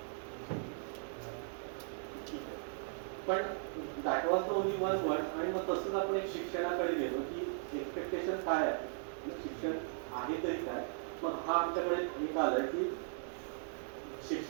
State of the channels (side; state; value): left; silent; digital silence